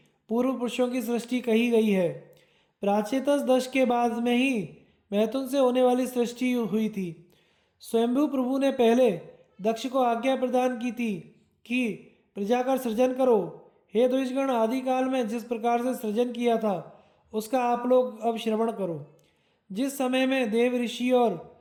पूर्व पुरुषों की सृष्टि कही गई है। प्राचेतस दश के बाद में ही मैथुन से होने वाली सृष्टि हुई थी। स्वयंभू प्रभु ने पहले दक्ष को आज्ञा प्रदान की थी कि प्रजा का सृजन करो। हे द्विजगण, आदिकाल में जिस प्रकार से सृजन किया था उसका आप लोग अब श्रवण करो। जिस समय में देव, ऋषि और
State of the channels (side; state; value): both; identical; correlation 1.00